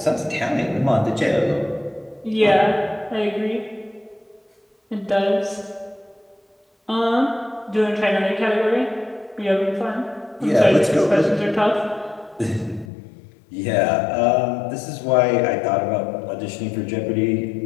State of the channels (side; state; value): right; drops out; at 12.9 s